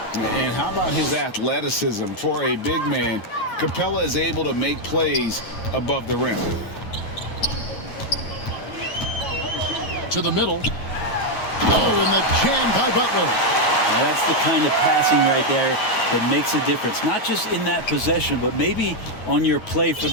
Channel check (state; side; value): late; right; 9.3 ms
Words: And how about his athleticism? For a big man, Capella is able to make plays above the rim. To the middle. Oh, and the jam by Butler. Now that's the kind of passing right there that makes a difference. Not just in that possession, but maybe on your play for